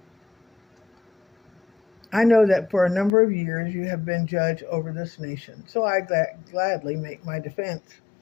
"I know that for a number of years you have been judge over this nation, so I gladly make my defense.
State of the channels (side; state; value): right; drops out; at 3.1 s